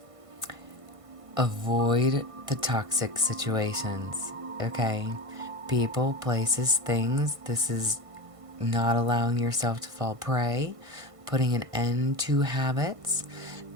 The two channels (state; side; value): late; left; 1.5 ms